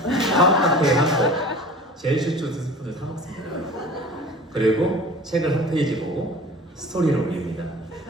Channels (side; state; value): both; normal; correlation 0.41